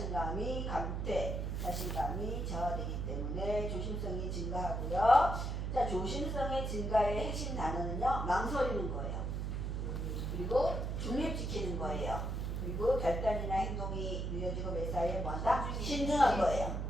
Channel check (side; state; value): right; noise; hum, 2 dB below the sound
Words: 감퇴, 자신감이 저하되기 때문에 조심성이 증가하고요. 자, 조심성의 증가의 핵심 단어는요, 망설이는 거예요. 그리고 중립지키는 거예요. 그리고 결단이나 행동이 느려지고 매사에 뭐한다? 신중한 거예요.